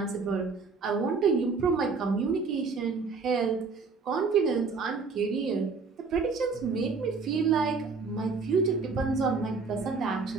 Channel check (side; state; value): left; quieter; 4.6 dB